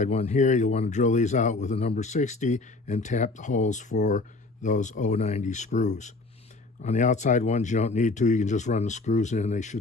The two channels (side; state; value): right; quieter; 3.4 dB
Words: one here, you'll want to drill these out with a number 60 and tap the holes for those 090 screws. On the outside ones, you don't need to. You can just run the screws in. They